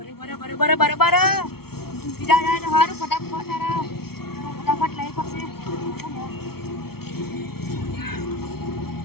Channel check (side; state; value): right; late; 0.95 ms